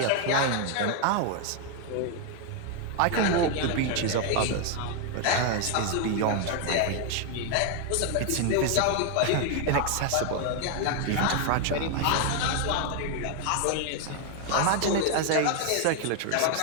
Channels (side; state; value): both; different; correlation 0.01